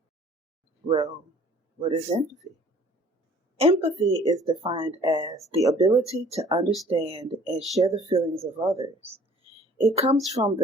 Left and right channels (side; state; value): both; normal; correlation 0.53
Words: Well, what is empathy? Empathy is defined as the ability to understand and share the feelings of others. It comes from